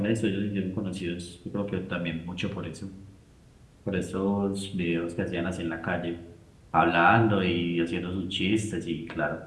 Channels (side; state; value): both; identical; correlation 1.00